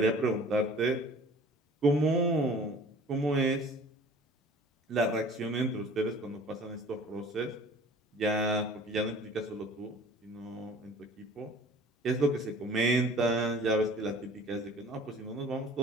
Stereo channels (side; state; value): both; normal; correlation 0.47